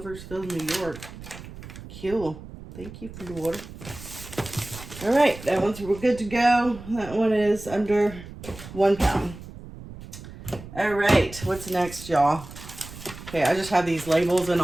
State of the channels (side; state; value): right; noise; rumble, 15 dB below the sound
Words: New York. Cool. Thank you, Floor. All right, that one's, we're good to go. That one is under 1 pound. All right, what's next, y'all? Okay, I just have these labels, and